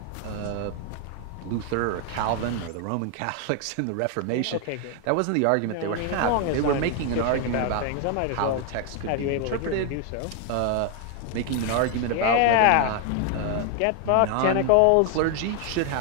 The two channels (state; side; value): different; both; correlation 0.00